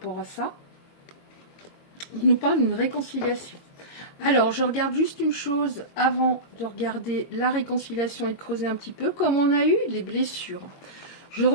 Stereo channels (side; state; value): right; late; 22 ms